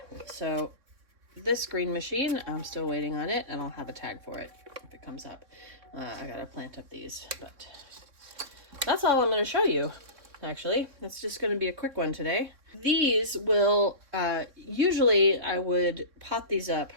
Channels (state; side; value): late; left; 3.6 ms